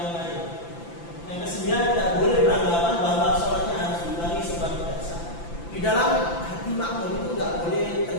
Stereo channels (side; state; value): right; late; 5.9 ms